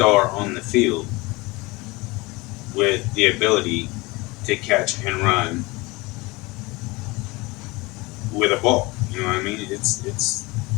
on the field with the ability to catch and run with a ball. You know what I mean? It's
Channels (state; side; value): quieter; right; 23.4 dB